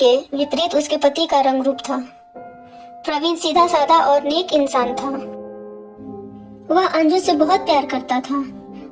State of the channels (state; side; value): identical; both; correlation 1.00